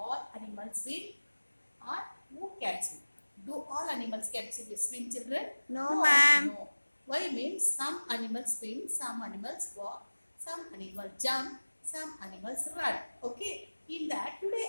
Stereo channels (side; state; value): both; inverted; correlation -1.00